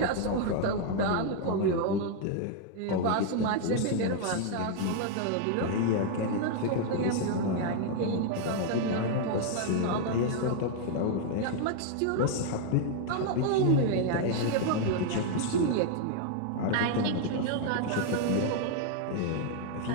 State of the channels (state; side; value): different; both; correlation 0.00